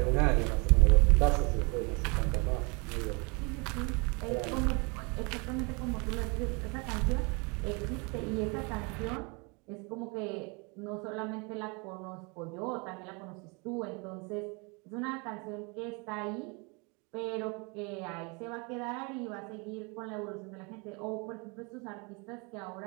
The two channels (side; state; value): left; quieter; 30.8 dB